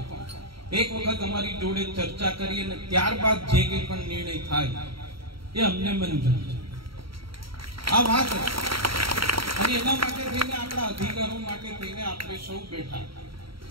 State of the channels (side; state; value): left; late; 0.74 ms